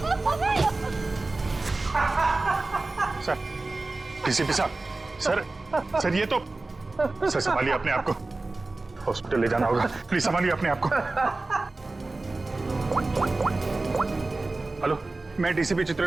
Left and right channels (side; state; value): left; quieter; 3.2 dB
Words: सर, डीसीपी साहब, सर ये तो, सर संभालिए अपने आप को, हॉस्पिटल ले जाना होगा, प्लीज संभालिए अपने आप को। हेलो, मैं डीसीपी